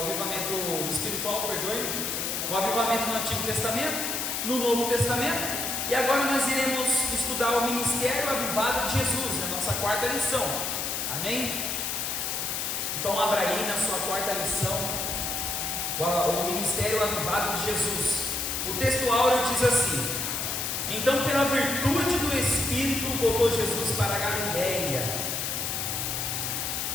espiritual, perdoe, o avivamento no Antigo Testamento, no Novo Testamento, e agora nós iremos estudar o ministério avivado de Jesus, na nossa quarta lição, amém? Então abra aí na sua quarta lição, o ministério avivado de Jesus. O texto áureo diz assim: então pela virtude do Espírito voltou Jesus para a Galileia,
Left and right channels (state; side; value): noise; left; hiss, 1 dB below the sound